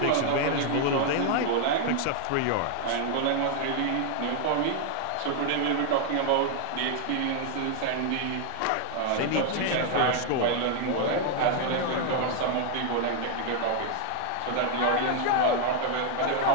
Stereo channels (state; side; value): different; both; correlation 0.00